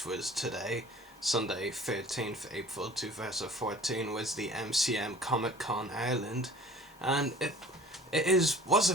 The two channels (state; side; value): normal; both; correlation 0.47